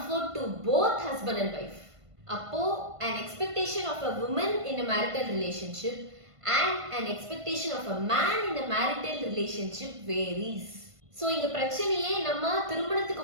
to both husband and wife. Appo an expectation of a woman in a marital relationship and an expectation of a man in a marital relationship varies. So இங்க பிரச்சனையே நம்ம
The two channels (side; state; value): left; late; 1.5 ms